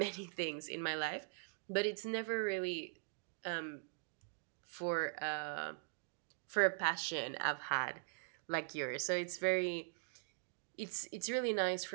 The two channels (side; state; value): left; silent; digital silence